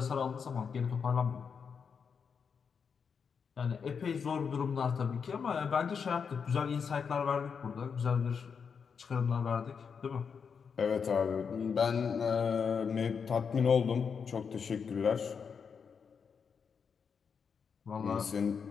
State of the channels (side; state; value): right; quieter; 6.2 dB